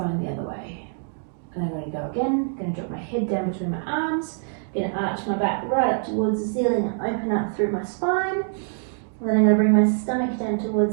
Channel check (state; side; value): silent; left; digital silence